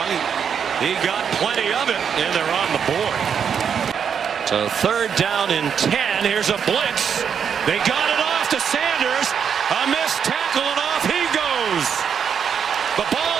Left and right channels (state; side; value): quieter; left; 7.4 dB